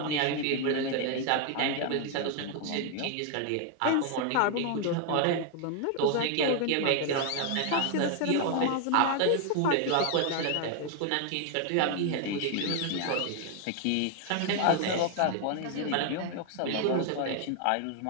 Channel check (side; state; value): both; different; correlation 0.00